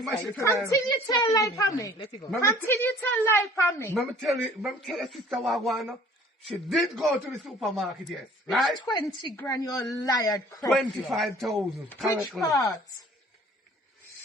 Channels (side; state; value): both; normal; correlation 0.52